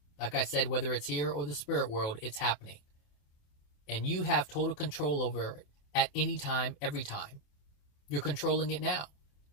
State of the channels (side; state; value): right; late; 28 ms